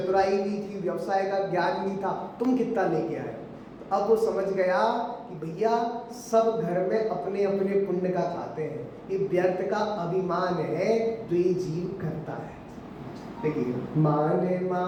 भी थी, व्यवसाय का ज्ञान भी था, तुम कितना लेके आए। तो अब वो समझ गया कि भैया सब घर में अपने अपने पुण्य का खाते हैं, ये व्यर्थ का अभिमान है जो ये जीव करता है। देखिए, मान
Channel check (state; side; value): identical; both; correlation 1.00